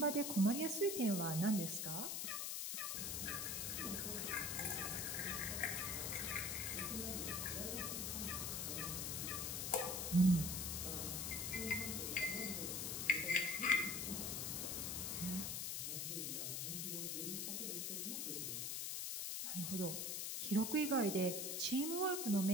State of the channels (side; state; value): left; noise; hiss, 1 dB below the sound